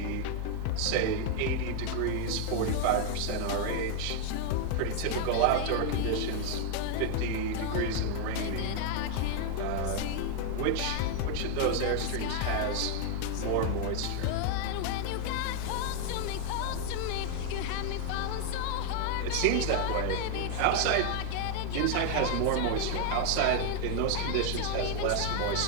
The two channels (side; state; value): both; different; correlation 0.00